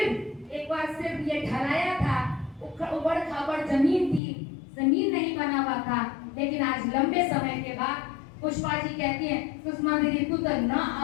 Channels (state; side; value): drops out; right; at 4.2 s